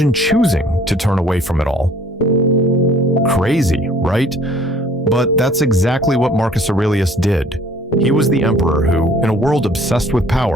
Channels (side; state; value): both; normal; correlation 0.55